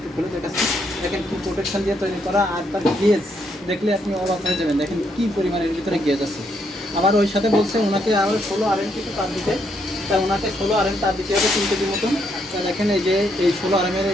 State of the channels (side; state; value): both; normal; correlation 0.75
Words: খুলে দেখাচ্ছি। দেখেন কি প্রোটেকশন দিয়ে তৈরি করা, আর তার গেজ দেখলে আপনি অবাক হয়ে যাবেন। দেখেন কি পরিমাণের ভিতরে গেজ আছে। আবার ওই সাথে বলছে ওনাকে আবার 16 RM কিছু তার দিতে, তাই ওনাকে 16 RM তার দিতে হবে 3 কেজির মতন। তা দেখেন এই যে এই 16 RM